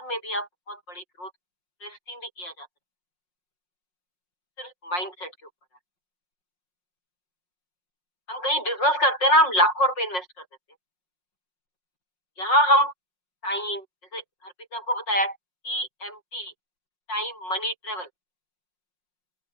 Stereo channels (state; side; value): late; right; 5.5 ms